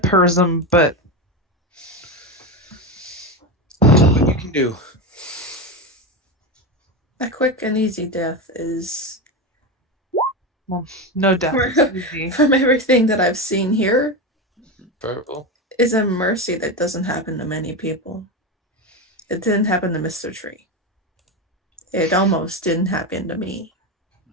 but What you can do. a quick and easy death is, no death is easy. from everything that I've seen here, Purple. is a mercy that doesn't happen to many people. It didn't happen to Mr. Tree. It almost didn't happen to me.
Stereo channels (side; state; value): both; normal; correlation 0.17